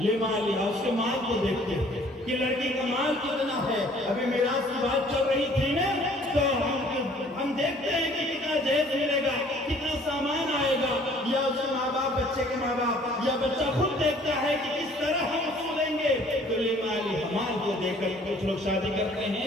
اس کے مال کو دیکھتے ہیں کہ لڑکی کا مال کتنا ہے. ابھی میراث کی بات چل رہی تھی نا، تو ہم دیکھتے ہیں کہ کتنا جہیز ملے گا، کتنا سامان آئے گا، یا اس کے ماں باپ، بچے کے ماں باپ، یا بچہ خود دیکھتا ہے کہ کس طرح ہم سولیں گے. تو لمالها، مال کو دیکھ کر کچھ لوگ شادی کرتے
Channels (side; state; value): both; normal; correlation 0.56